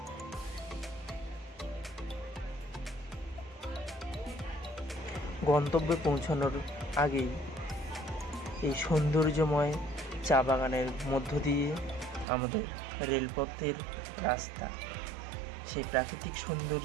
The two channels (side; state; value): left; drops out; at 12.2 s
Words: গন্তব্যে পৌঁছানোর আগেই এই সৌন্দর্যময় চা বাগানের মধ্য দিয়ে আমাদের রেলপথের রাস্তা, সেই প্রাকৃতিক